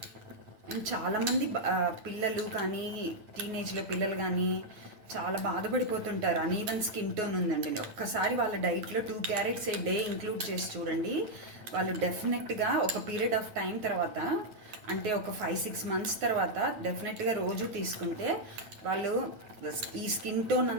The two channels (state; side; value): late; left; 9.0 ms